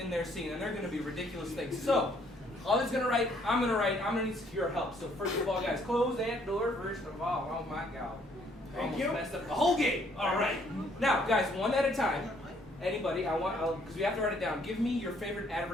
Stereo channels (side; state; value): both; normal; correlation 0.65